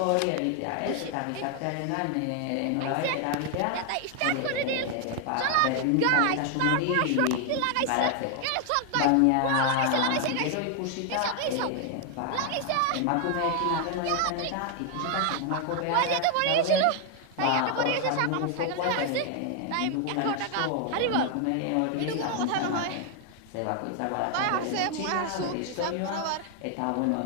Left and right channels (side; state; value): both; different; correlation 0.00